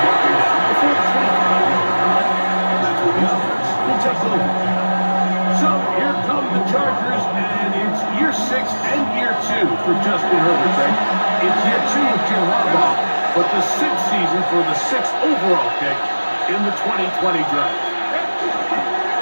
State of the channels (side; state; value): both; inverted; correlation -1.00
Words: marking down before the 25. That's where the offense will take over. So here come the Chargers, and it's year 6 and year 2 for Justin Herbert, right? It's year 2 with Jim Harbaugh, but the 6th season for the 6th overall pick in the 2020 draft.